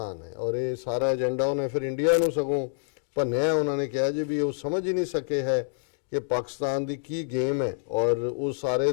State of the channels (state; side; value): silent; right; digital silence